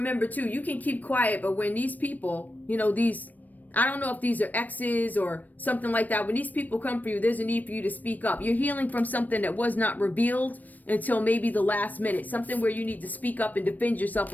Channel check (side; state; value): right; late; 0.083 ms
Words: too, you can keep quiet, but when these people, you know, these, I don't know if these are exes or something like that. When these people come for you, there's a need for you to speak up. You're healing from something that was not revealed until maybe the last minute. Something where you need to speak up and defend yourself